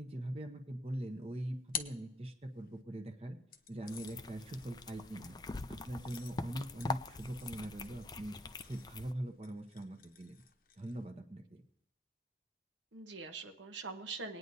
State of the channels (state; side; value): normal; both; correlation 0.70